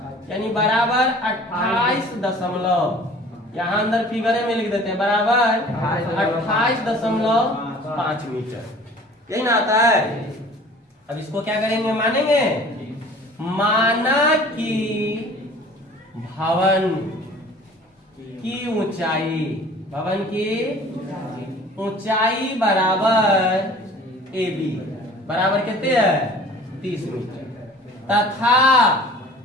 यानी बराबर 28 यहाँ अंदर फिगर में लिख देते हैं, बराबर 28.5 मीटर। यही ना आता है। अब इसको क्या करेंगे, मानेंगे। माना कि भवन की ऊंचाई, भवन की ऊंचाई बराबर ए बी, बराबर कितने है, 30 मीटर। तथा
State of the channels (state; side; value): normal; both; correlation 0.47